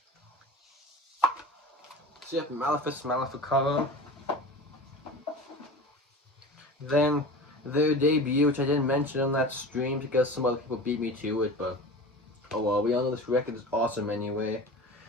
So you have Malefice Maleficarum. Then their debut, which I didn't mention on that stream because some other people beat me to it, but oh well, we all know this record is awesome anyway.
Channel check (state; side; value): normal; both; correlation 0.35